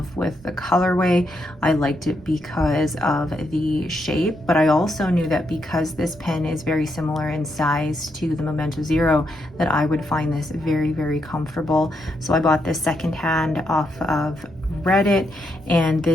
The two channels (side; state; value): both; normal; correlation 0.80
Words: with the colorway. I liked it because of the shape, but I also knew that because this pen is very similar in size to the Momento Zero, that I would find this very, very comfortable. So I bought this secondhand off of Reddit, and